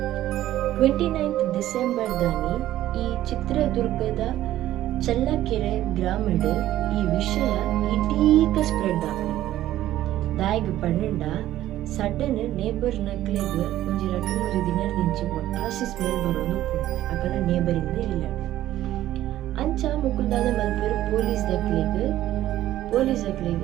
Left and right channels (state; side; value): quieter; left; 13.7 dB